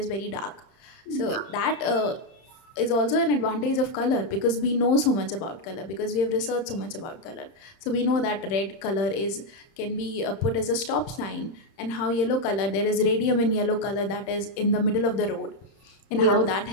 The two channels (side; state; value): right; late; 30 ms